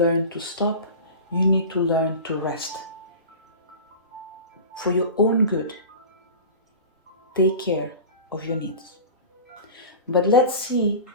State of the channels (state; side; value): inverted; both; correlation -0.34